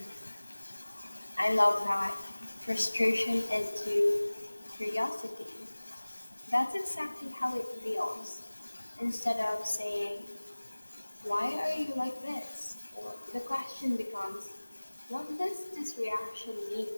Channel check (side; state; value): both; inverted; correlation -1.00